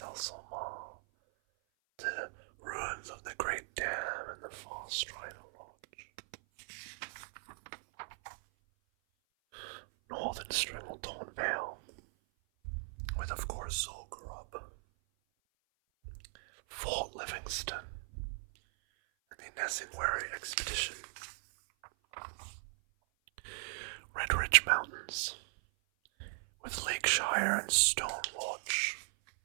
The ruins of the Great Dam and the Far Strider Lodge. Northern Stranglethorn Vale, with of course Zul'Gurub, Fort Livingston, and the Nesingwary Expedition. Red Ridge Mountains, with Lakeshire and Stonewatch.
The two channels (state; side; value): silent; left; 53 dB below the other